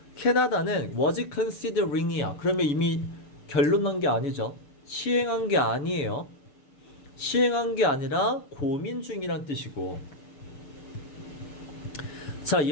캐나다는 was considering이야. 그러면 이미 결론 난 게 아니죠. 시행한 게 아니에요. 시행한 게 아니라 고민 중이란 뜻이고. 자,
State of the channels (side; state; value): right; late; 7.1 ms